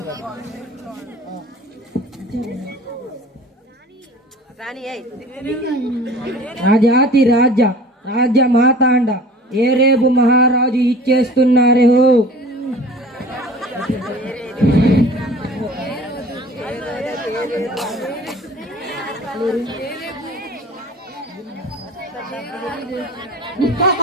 రాజాతి రాజ్య మాతాండ ఏ రేపు మహారాజు ఇచ్చేస్తున్నారే హో.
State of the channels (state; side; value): normal; both; correlation 0.43